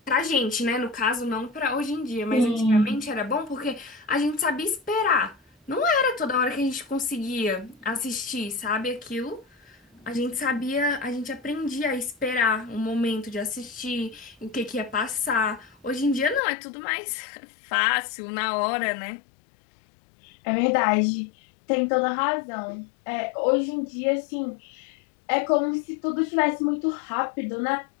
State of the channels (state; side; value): drops out; right; at 16.4 s